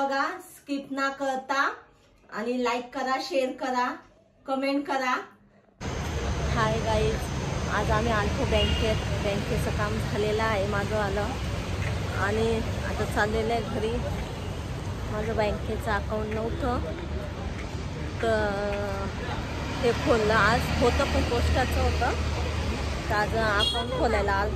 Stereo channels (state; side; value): identical; both; correlation 1.00